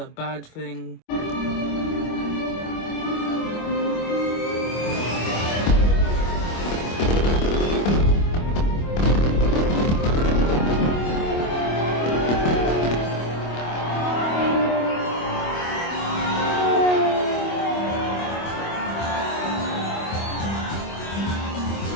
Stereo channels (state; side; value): late; right; 25 ms